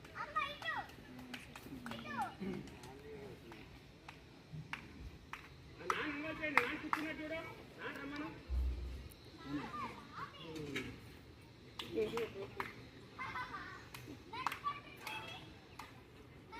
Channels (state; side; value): identical; both; correlation 1.00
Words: కూర్చున్నట్టు చూడు, రమ్మను.